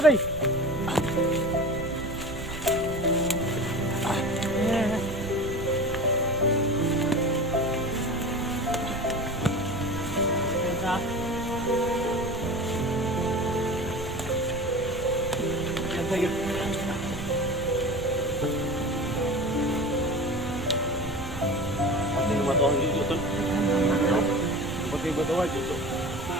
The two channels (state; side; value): noise; right; rumble, 10 dB below the sound